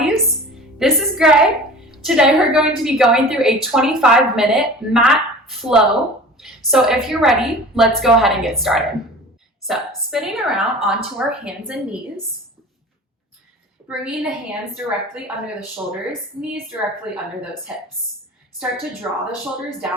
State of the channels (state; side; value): normal; both; correlation 0.40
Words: This is Greg. Today we're going to be going through a 25-minute mat flow. So if you're ready, let's go ahead and get started. So spinning around onto our hands and knees, bringing the hands directly under the shoulders, knees directly under those hips. Start to draw the shoulders